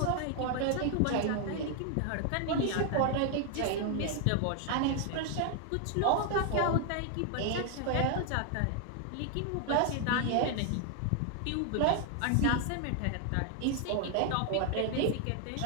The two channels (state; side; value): different; both; correlation 0.00